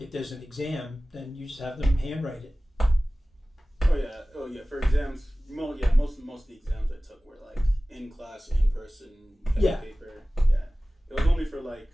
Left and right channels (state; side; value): normal; both; correlation 0.97